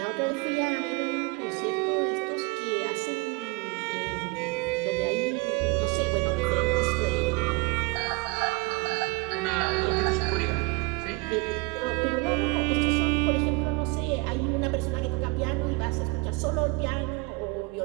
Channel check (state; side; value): quieter; left; 25.2 dB